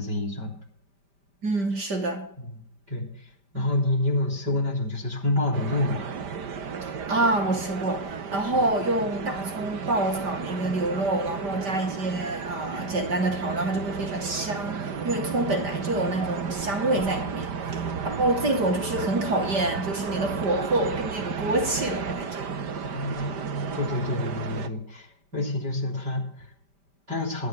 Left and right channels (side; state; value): left; late; 5.1 ms